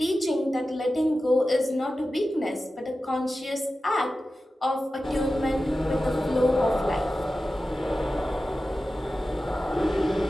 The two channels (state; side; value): normal; both; correlation 0.94